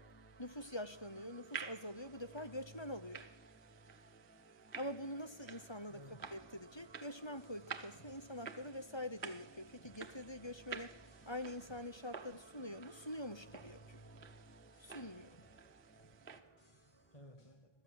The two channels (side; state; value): right; late; 1.3 ms